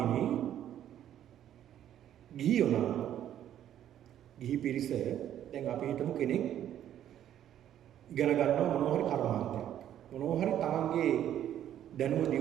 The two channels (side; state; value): left; quieter; 11.0 dB